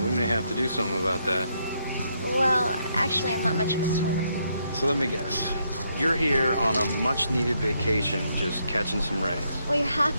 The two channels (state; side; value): inverted; both; correlation -0.76